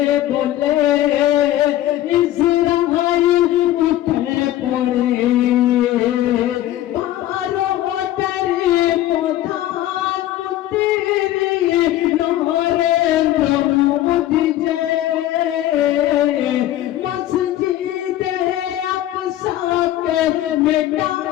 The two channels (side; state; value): right; quieter; 13.7 dB